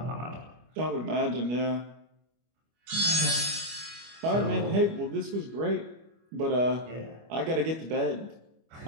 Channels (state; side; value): late; left; 25 ms